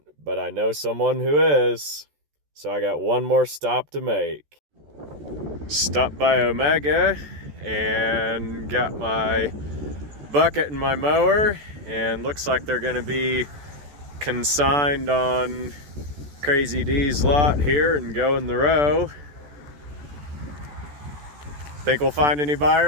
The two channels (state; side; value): late; left; 14 ms